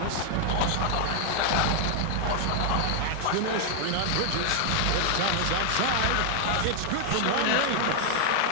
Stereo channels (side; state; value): both; different; correlation 0.00